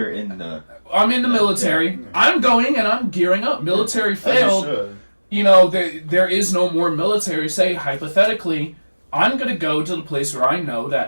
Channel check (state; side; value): inverted; both; correlation -1.00